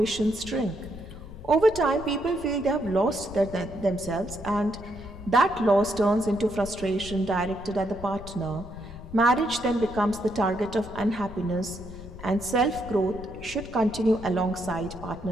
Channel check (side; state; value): left; noise; rumble, 14 dB below the sound